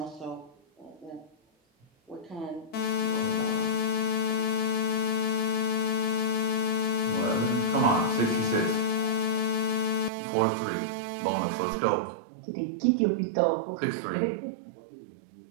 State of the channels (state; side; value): drops out; left; at 10.1 s